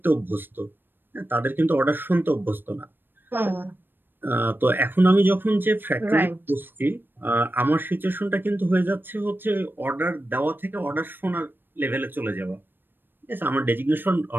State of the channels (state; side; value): late; left; 0.096 ms